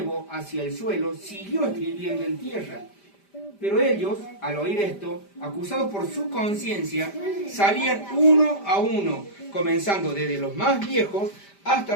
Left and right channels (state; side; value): late; right; 5.0 ms